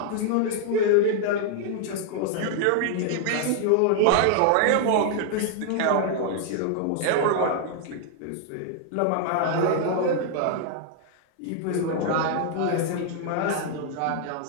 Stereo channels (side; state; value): both; different; correlation 0.00